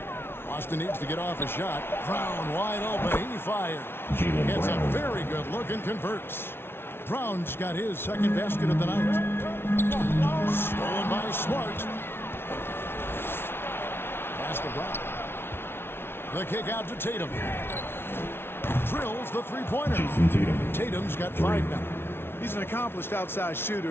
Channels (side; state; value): right; late; 0.11 ms